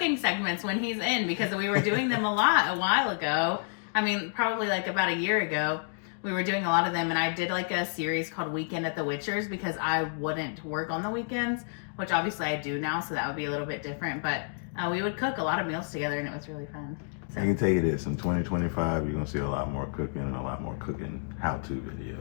segments when he's in, because we were doing them a lot a while ago. I mean, probably like about a year ago, we were doing a lot of them, and I did like a series called Weekend at the Witchers because I wouldn't work on the weekends, which obviously I do now, so that would be a little bit different, but we would cook a lot of meals together, and it was really fun. So. I can tell you this, in 2025, you're going to see a lot more cooking and a lot more cooking how-to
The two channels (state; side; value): silent; right; digital silence